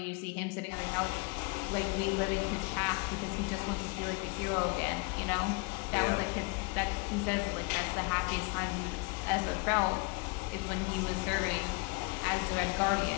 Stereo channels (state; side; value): quieter; right; 29.3 dB